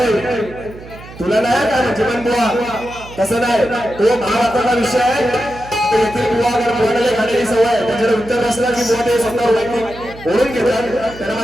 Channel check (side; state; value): right; noise; hum, 17 dB below the sound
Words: तुला नाही काय जीवन बुवा तसं नाही, तो महाभारताचा विषय आहे. येथील बुवा अगर बुवाला खाण्याची सवय आहे, त्याच्याकडे उत्तर नसलं की बुवा ते स्वतः वैयक्तिक ओढून घेतात. त्यांना